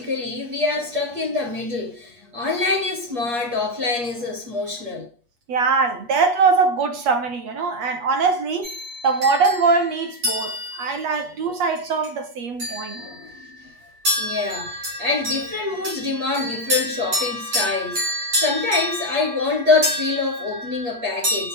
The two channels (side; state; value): left; late; 8.4 ms